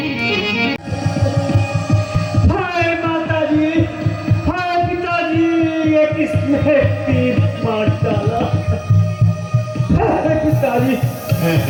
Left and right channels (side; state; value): both; identical; correlation 1.00